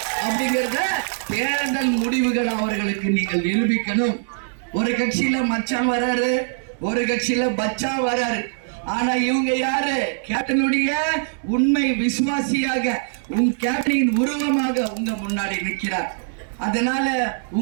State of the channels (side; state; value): left; silent; digital silence